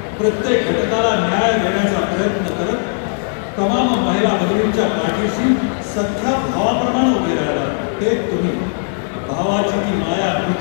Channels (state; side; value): silent; right; 68 dB below the other